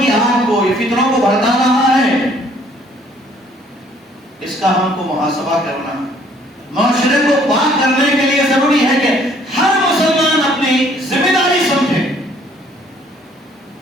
آگ کو، یہ فتنوں کو بھڑکا رہا ہے؟ اس کا ہم کو محاسبہ کرنا، معاشرے کو پاک کرنے کے لیے ضروری ہے کہ ہر مسلمان اپنی ذمہ داری سمجھے۔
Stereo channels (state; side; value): normal; both; correlation 0.61